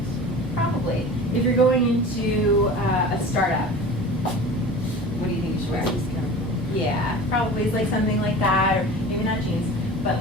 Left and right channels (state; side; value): normal; both; correlation 0.37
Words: Probably. If you're going into a startup, what do you think you should wear? Yeah, probably it's like something like that, or maybe not jeans, but